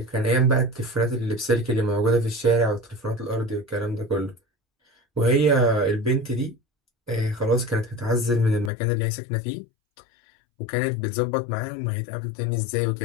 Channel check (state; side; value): drops out; right; at 8.7 s